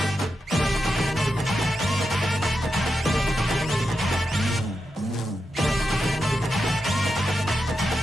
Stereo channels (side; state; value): both; normal; correlation 0.88